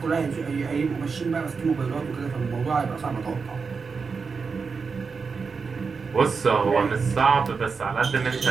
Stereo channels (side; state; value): left; quieter; 5.1 dB